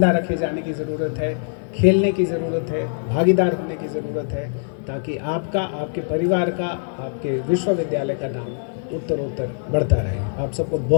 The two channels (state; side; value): silent; right; 64 dB below the other